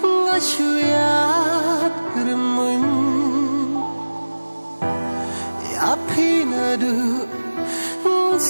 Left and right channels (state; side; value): inverted; both; correlation -1.00